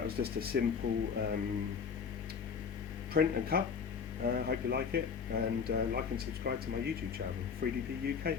was just a simple print and cut. Hope you like it, and like and subscribe to my YouTube channel. 3DP UK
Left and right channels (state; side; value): quieter; right; 6.3 dB